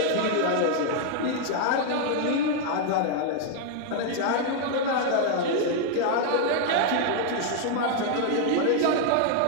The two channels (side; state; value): both; different; correlation 0.00